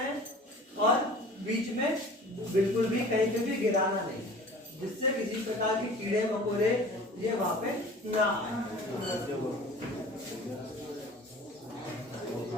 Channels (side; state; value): both; normal; correlation 0.43